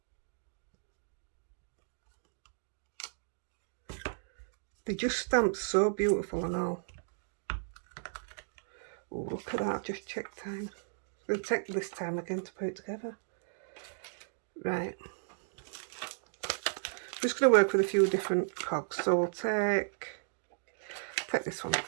They just stamp so beautiful and all. Oh, look at that, I've just checked time. It'll take this time again to put it together. Right. Just going to work with a few different cogs. So we'll take this one.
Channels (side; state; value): left; silent; digital silence